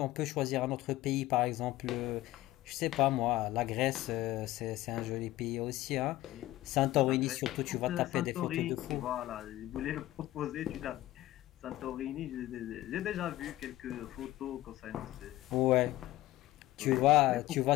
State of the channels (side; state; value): right; quieter; 16.4 dB